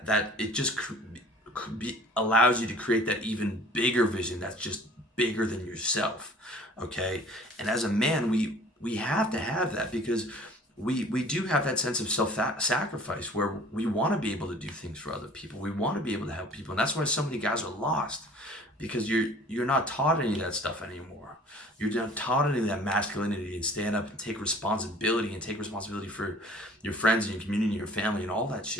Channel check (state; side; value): normal; both; correlation 0.49